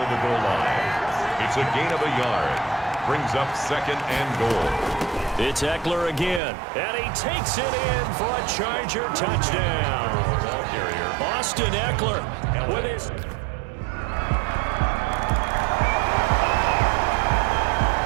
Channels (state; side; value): drops out; left; at 6.4 s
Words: the goal line. It's a gain of a yard. Brings up 2nd and goal. It's Eckler again. And he takes it in for a Charger touchdown. Austin Eckler with his...